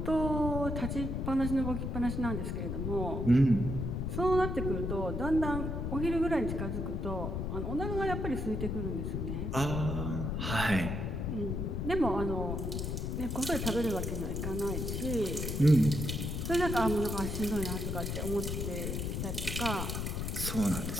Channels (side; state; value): left; noise; rumble, 2 dB below the sound